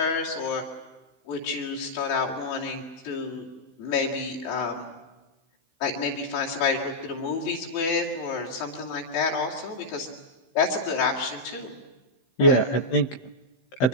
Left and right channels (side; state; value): right; late; 16 ms